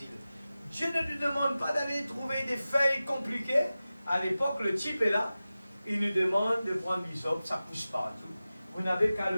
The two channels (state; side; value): inverted; both; correlation -0.95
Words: Dieu ne nous demande pas d'aller trouver des feuilles compliquées. À l'époque, le type est là, il nous demande de prendre l'hysope, ça pousse partout. Vous n'avez qu'à